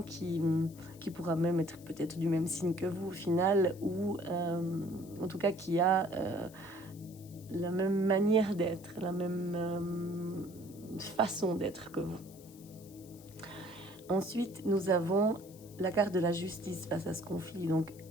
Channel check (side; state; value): left; noise; hiss, 22 dB below the sound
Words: qui pourra même être peut-être du même signe que vous au final, ou en tout cas qui a la même manière d'être, la même façon d'être que vous. Ensuite, nous avons la carte de la justice face à ce conflit. Donc,